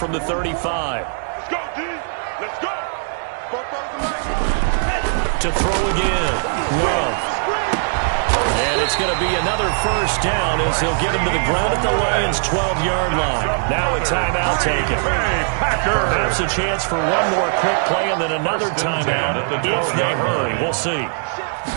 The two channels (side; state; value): left; silent; digital silence